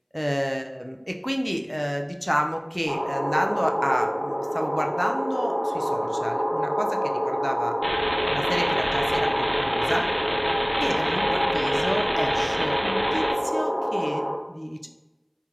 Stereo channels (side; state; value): both; identical; correlation 1.00